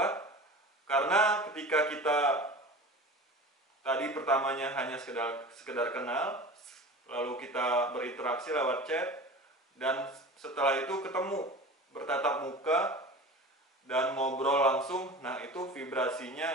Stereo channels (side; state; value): both; normal; correlation 0.35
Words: Karena ketika kita tadi pertamanya hanya sekedar kenal, lalu kita berinteraksi lewat chat, dan setelah itu ketemu, bertatap muka, dan ngobrol langsung. Nah, itu